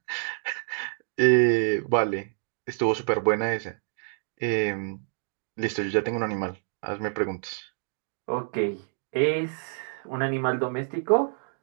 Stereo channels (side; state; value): left; silent; 60 dB below the other